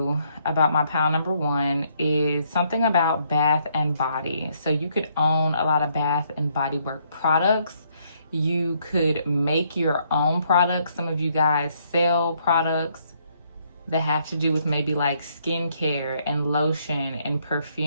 about my pile number 1 is something about bath and body. So you could own a lot of bath and body work products. You could make your own products. Some of you guys sell products that have to do with maybe like skincare and lotion and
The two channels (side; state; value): both; inverted; correlation -0.70